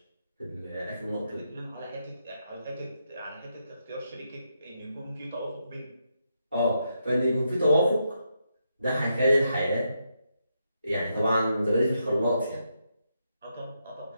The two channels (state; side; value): inverted; both; correlation -0.82